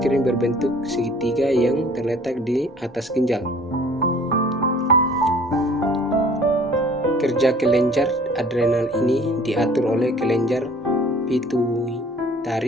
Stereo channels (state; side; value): normal; both; correlation 0.51